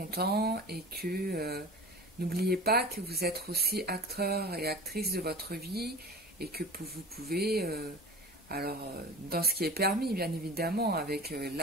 et que n'oubliez pas que vous êtes aussi acteur et actrice de votre vie et que vous pouvez, dans ce qui est permis, bien évidemment, avec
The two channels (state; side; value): normal; both; correlation 0.37